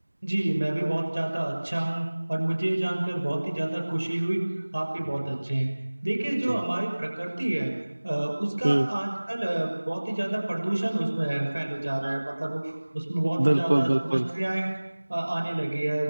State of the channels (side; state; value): both; inverted; correlation -1.00